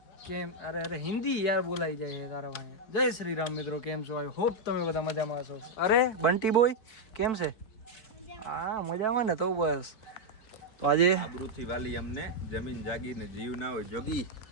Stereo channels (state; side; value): late; right; 4.5 ms